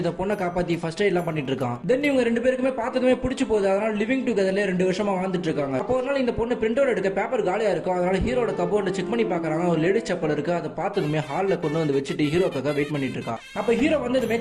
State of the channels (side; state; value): both; identical; correlation 1.00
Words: இந்த பொண்ணை காப்பாத்தி ஃபர்ஸ்ட் எய்ட் எல்லாம் பண்ணிட்டு இருக்கான். தென் இவங்க ரெண்டு பேருக்குமே பார்த்ததுமே பிடிச்சு போகுது. அதனால லிவிங் டுகெதர்ல 2 வருஷமா வாழ்ந்துட்டு இருக்காங்க. அப்போ ஒரு நாள் இந்த பொண்ணு பிரிண்ட் அவுட் எடுக்க பேப்பர் காலியா இருக்கும். அதனால ஹீரோட கபோர்ட்ல செக் பண்ணி பாக்குறாங்க. ஒரு லேடி செப்பல் இருக்கு. அதை பார்த்ததுமே ஹால்ல கொண்டு வந்து வச்சுட்டு ஹீரோக்காக வெயிட் பண்ணிட்டு இருக்கா. அப்ப ஹீரோ வந்ததுமே